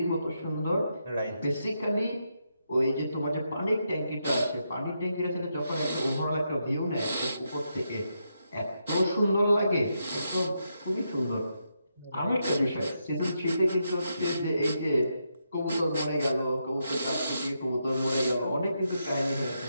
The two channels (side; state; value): both; inverted; correlation -0.82